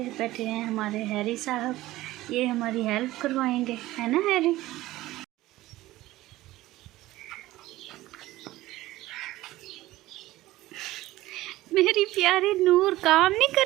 बैठे हैं हमारे हैरी साहब, ये हमारी हेल्प करवाएंगे, है ना हैरी? मेरी प्यारी नूर काम नहीं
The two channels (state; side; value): quieter; left; 16.8 dB